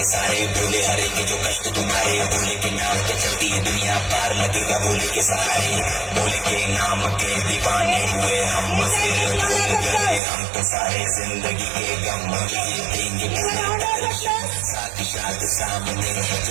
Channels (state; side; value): drops out; left; at 10.2 s